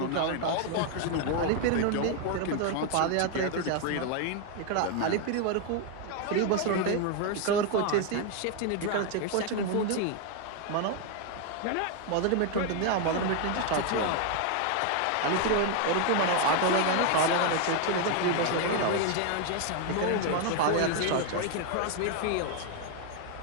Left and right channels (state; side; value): different; both; correlation 0.01